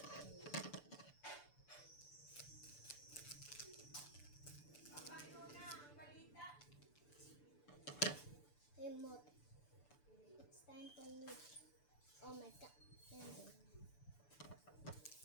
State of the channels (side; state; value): right; late; 6.9 ms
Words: Remote. It's time for me. Oh my god.